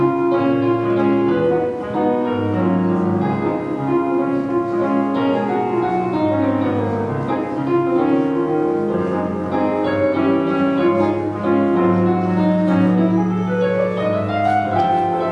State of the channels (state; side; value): identical; both; correlation 1.00